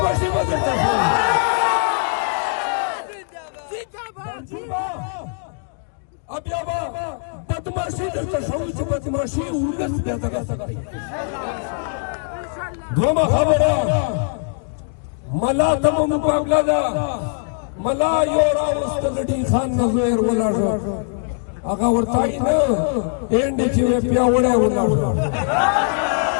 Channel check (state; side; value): silent; right; digital silence